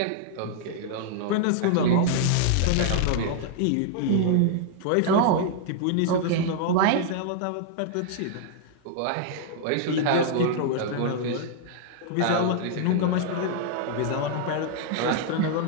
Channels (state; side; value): different; both; correlation -0.01